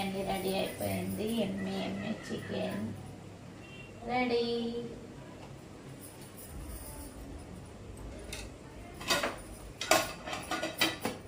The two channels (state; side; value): identical; both; correlation 1.00